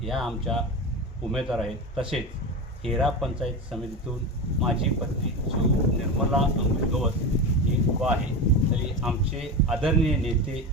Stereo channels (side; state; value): both; normal; correlation 0.22